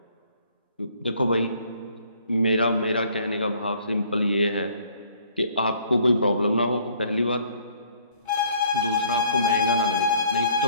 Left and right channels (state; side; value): inverted; both; correlation -0.59